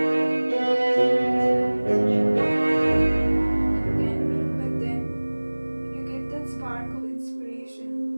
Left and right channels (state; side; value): inverted; both; correlation -1.00